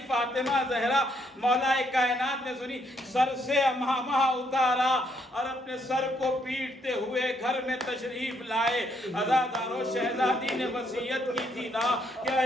فاطمہ زہرا مولا کائنات نے سنی، سر سے امامہ اتارا اور اپنے سر کو پیٹتے ہوئے گھر میں تشریف لائے۔ عزاداروں شہزادی نے وصیت کی تھی نا کہ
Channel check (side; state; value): both; normal; correlation 0.72